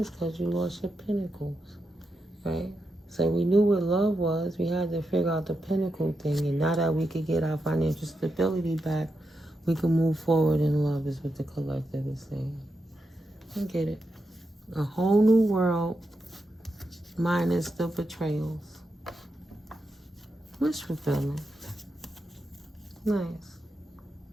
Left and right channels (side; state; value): both; normal; correlation 0.86